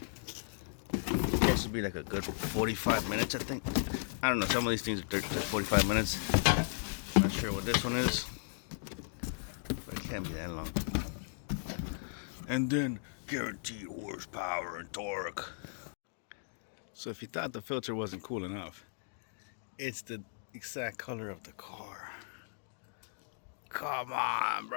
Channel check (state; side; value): silent; right; digital silence